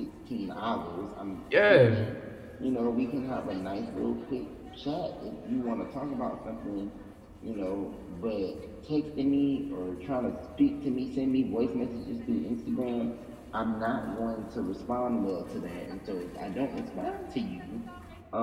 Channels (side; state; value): both; identical; correlation 1.00